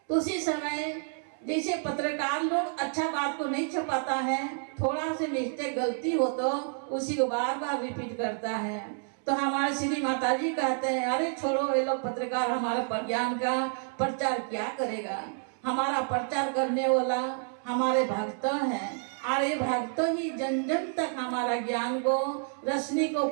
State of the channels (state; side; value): silent; left; 58 dB below the other